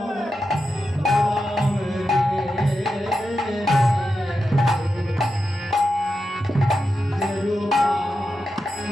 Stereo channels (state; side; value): normal; both; correlation 0.89